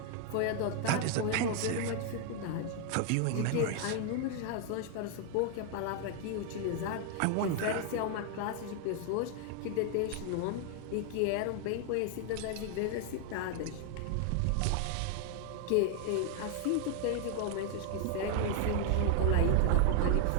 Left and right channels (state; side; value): different; both; correlation 0.00